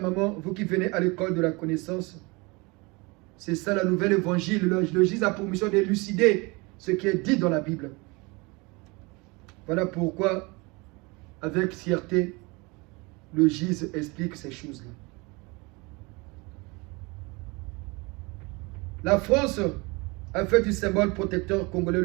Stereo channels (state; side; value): quieter; left; 26.5 dB